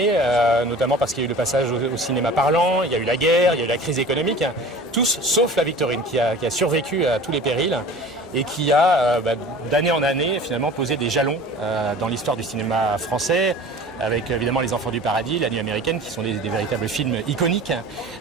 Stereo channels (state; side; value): normal; both; correlation 0.41